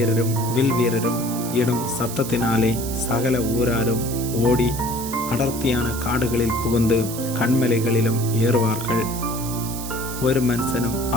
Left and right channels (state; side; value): noise; right; hiss, 9 dB below the sound